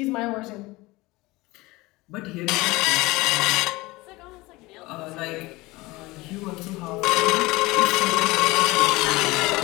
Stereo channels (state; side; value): quieter; right; 21.3 dB